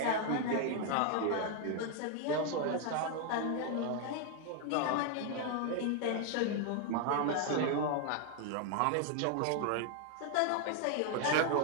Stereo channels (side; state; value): both; different; correlation 0.00